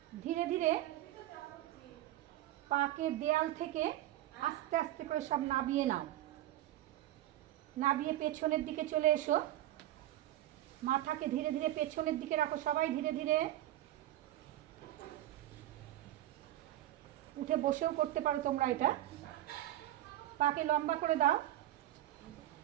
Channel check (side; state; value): left; quieter; 14.3 dB